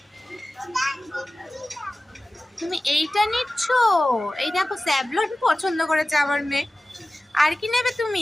তুমি এইটা নিচ্ছ? এই দেখো স্যাভলন পছন্দ করেছে আমার মেয়ে। আর কি নেবে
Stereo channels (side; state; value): both; normal; correlation 0.96